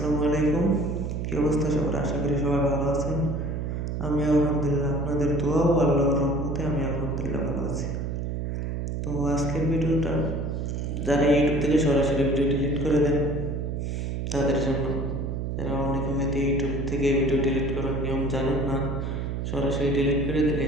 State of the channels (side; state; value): right; noise; hum, 3 dB below the sound